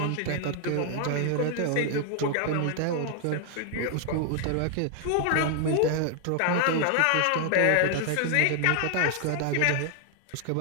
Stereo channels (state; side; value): different; both; correlation 0.00